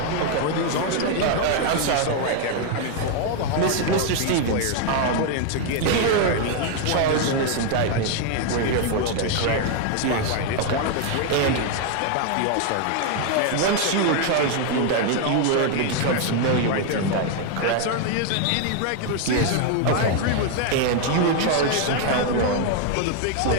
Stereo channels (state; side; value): different; both; correlation 0.00